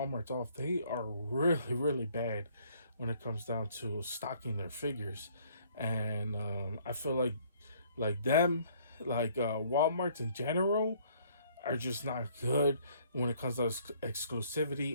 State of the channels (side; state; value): both; inverted; correlation -0.61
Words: off. They are really, really bad when it comes down to stocking their figures, and I feel like them, like Walmarts in general, are just not good when it comes to